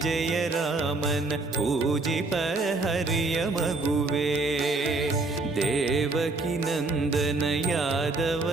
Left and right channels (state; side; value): quieter; left; 3.3 dB